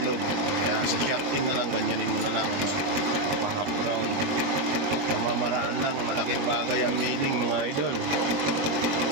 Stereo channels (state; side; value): late; left; 21 ms